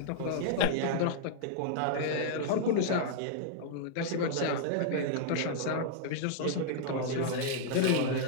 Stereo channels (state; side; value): different; both; correlation -0.01